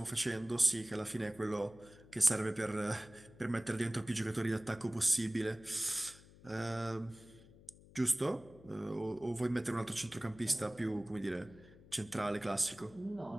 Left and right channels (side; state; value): left; noise; hum, 22 dB below the sound